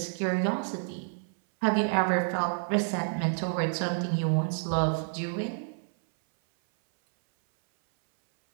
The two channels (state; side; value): silent; left; 59 dB below the other